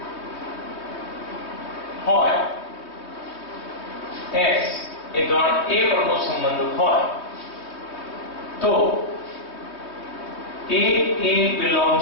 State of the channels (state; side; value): late; right; 3.2 ms